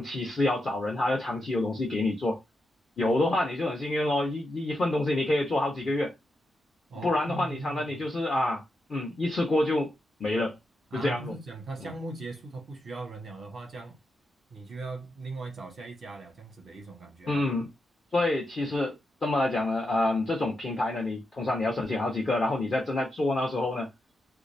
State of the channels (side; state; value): both; normal; correlation 0.85